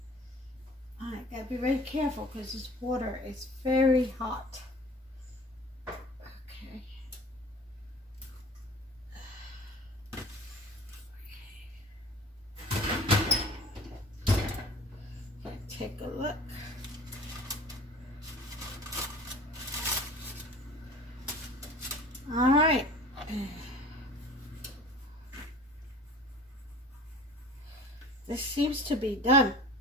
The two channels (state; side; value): normal; both; correlation 0.43